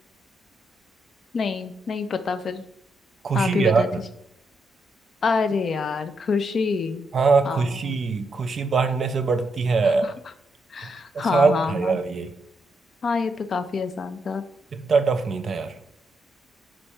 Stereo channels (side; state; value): both; normal; correlation 0.80